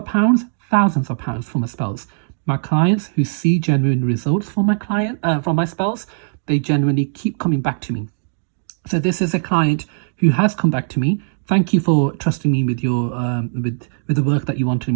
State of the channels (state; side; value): silent; left; 66 dB below the other